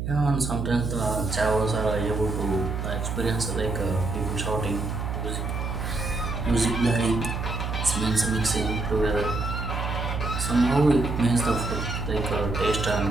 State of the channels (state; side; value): noise; right; hum, 3 dB below the sound